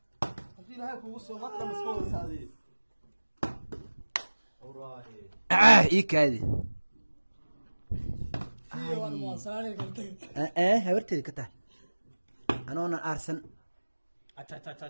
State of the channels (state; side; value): inverted; both; correlation -1.00